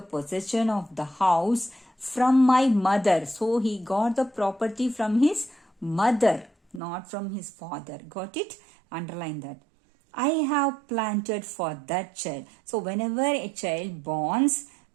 of the house from my mother. So he got the property from his mother, not from his father. Got it? Underline that. I have planted for that child. So whenever a child borns,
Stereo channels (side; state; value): left; drops out; at 6.8 s